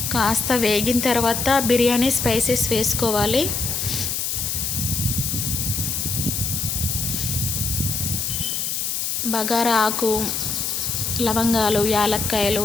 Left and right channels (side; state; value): left; noise; hiss, 1 dB below the sound